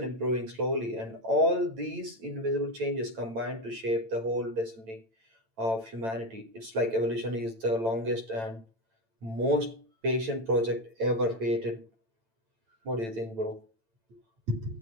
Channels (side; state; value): left; late; 8.9 ms